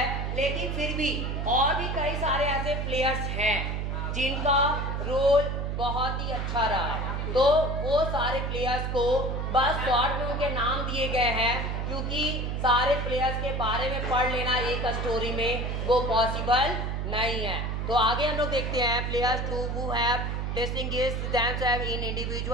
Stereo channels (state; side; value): noise; right; hum, 2 dB below the sound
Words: लेकिन फिर भी और भी कई सारे ऐसे प्लेयर्स हैं जिनका रोल बहुत ही अच्छा रहा। तो वो सारे प्लेयर्स को बस शॉर्ट में उनके नाम दिए गए हैं, क्योंकि सारे प्लेयर्स के बारे में पढ़ लेना एक स्टोरी में वो पॉसिबल नहीं है। तो आगे हम लोग देखते हैं players who have distinguished themselves in